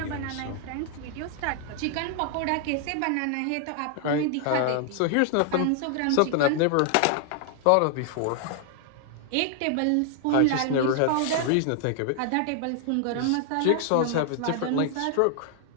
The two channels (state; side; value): different; both; correlation 0.00